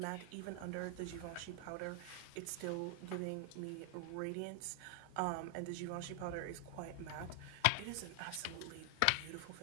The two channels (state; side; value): different; both; correlation 0.00